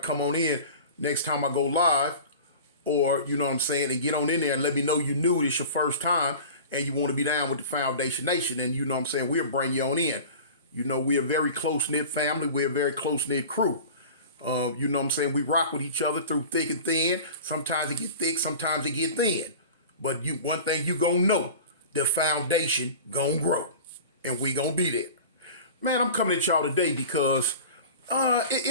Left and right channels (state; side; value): inverted; both; correlation -0.37